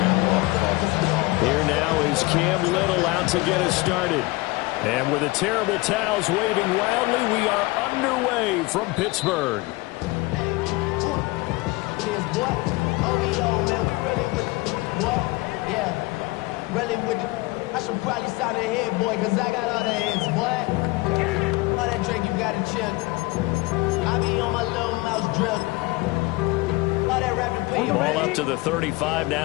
Here now is Cam Little out to get us started. And with the terrible towels waving wildly, we are underway from Pittsburgh. I should probably sign a head, boy, because I got all the hits, boy. All that Drake, you got to chill. I be on my little mouse drip. All that rapping pay you Ball up to the 35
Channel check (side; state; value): right; quieter; 22.3 dB